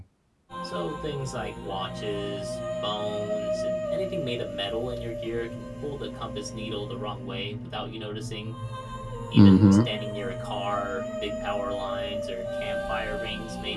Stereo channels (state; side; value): identical; both; correlation 1.00